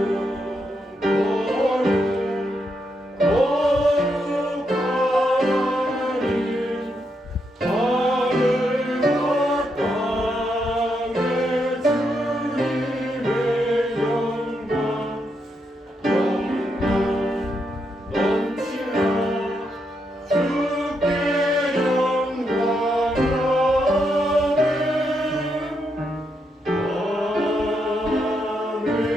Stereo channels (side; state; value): both; normal; correlation 0.80